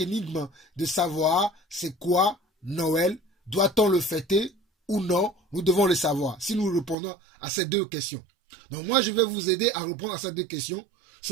de savoir c'est quoi Noël, doit-on le fêter ou non, nous devons le savoir, si nous répondons à ces deux questions. Donc, moi, je vais vous aider à répondre à ces deux questions,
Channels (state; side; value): drops out; left; at 7.0 s